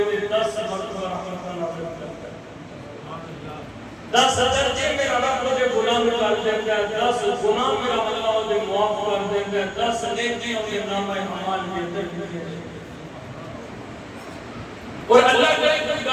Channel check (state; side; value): identical; both; correlation 1.00